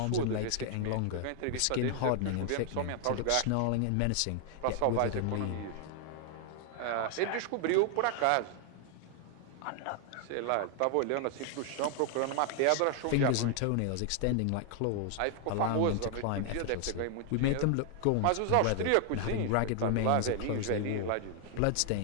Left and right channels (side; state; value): both; different; correlation 0.00